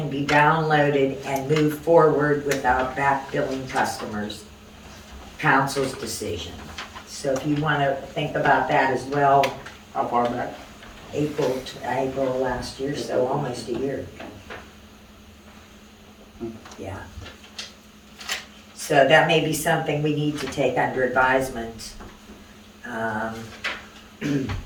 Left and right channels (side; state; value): both; identical; correlation 1.00